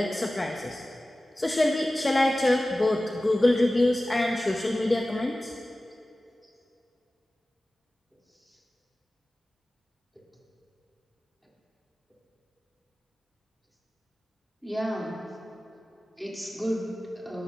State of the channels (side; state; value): both; normal; correlation 0.96